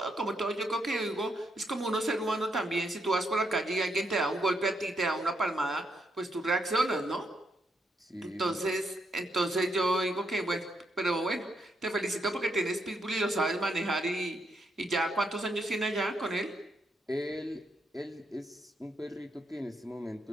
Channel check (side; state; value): both; normal; correlation 0.78